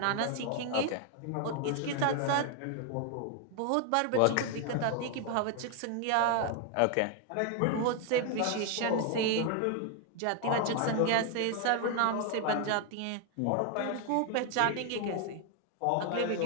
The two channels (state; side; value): different; both; correlation 0.00